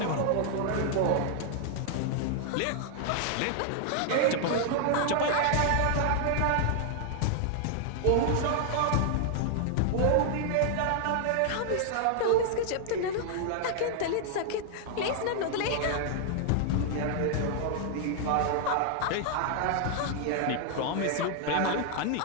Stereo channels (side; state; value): both; different; correlation 0.00